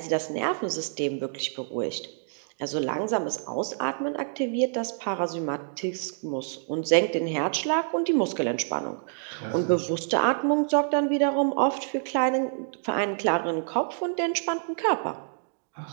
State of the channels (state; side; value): silent; left; digital silence